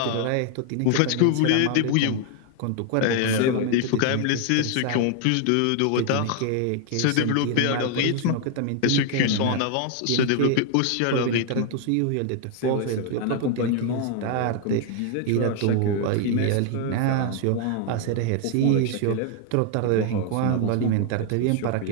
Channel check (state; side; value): different; both; correlation 0.00